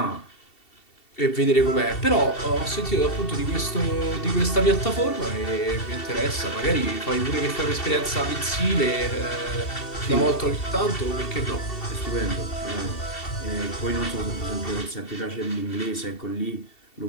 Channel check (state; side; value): late; right; 2.7 ms